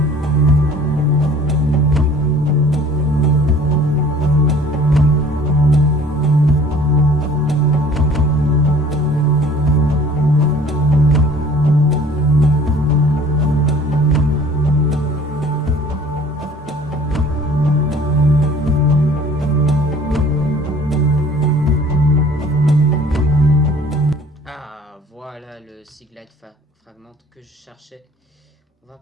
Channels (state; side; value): normal; both; correlation 0.50